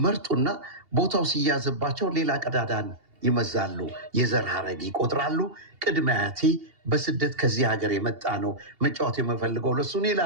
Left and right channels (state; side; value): late; left; 2.8 ms